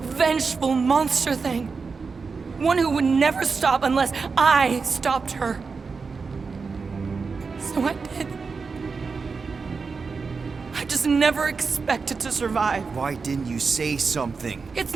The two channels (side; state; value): left; quieter; 4.8 dB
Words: monster thing. One who would never stop unless I stopped her. So I did. I just never expected to survive. Why didn't you say something? It's